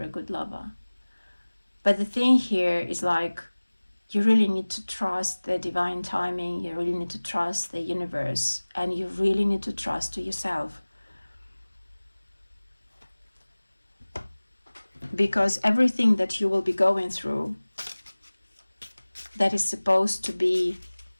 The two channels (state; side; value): inverted; both; correlation -1.00